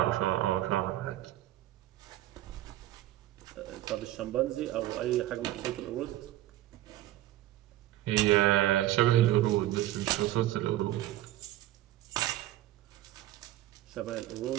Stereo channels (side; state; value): left; quieter; 14.4 dB